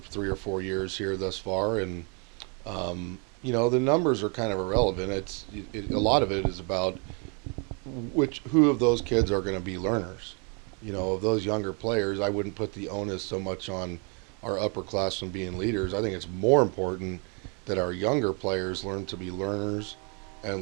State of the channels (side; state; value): left; quieter; 36.0 dB